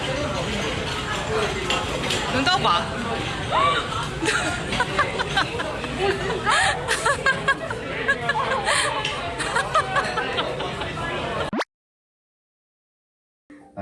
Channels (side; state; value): both; identical; correlation 1.00